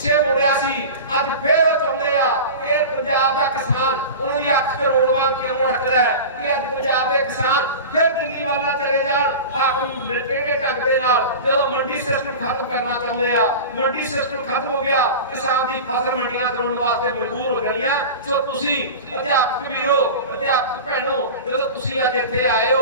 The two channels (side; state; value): both; inverted; correlation -0.31